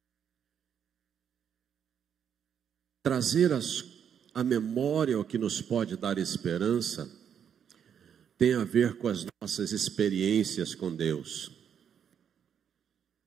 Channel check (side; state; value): left; quieter; 8.2 dB